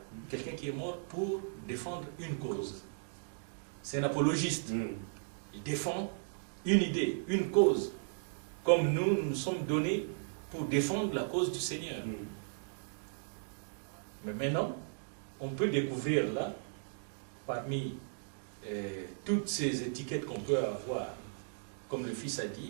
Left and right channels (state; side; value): silent; left; digital silence